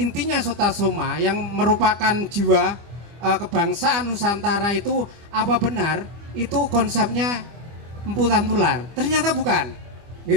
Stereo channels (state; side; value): late; left; 25 ms